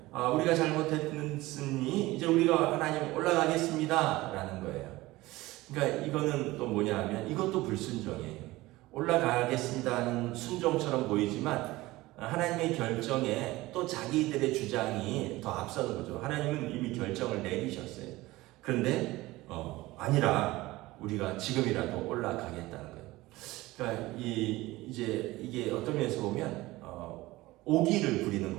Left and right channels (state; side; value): quieter; left; 19.0 dB